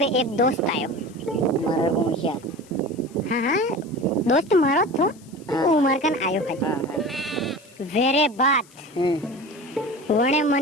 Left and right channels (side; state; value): left; noise; hiss, 26 dB below the sound